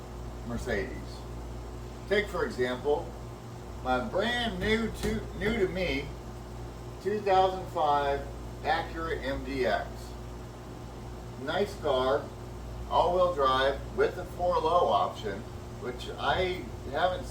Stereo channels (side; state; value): both; identical; correlation 1.00